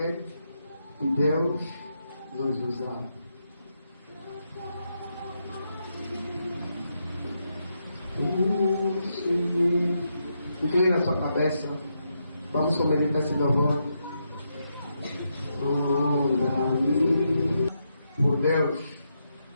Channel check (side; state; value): both; inverted; correlation -0.82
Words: de Deus nos usar. Inclina a sua cabeça. Vamos meditar esse louvor. Por Deus.